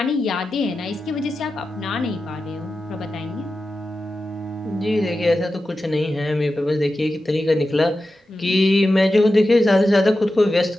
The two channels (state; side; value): normal; both; correlation 0.92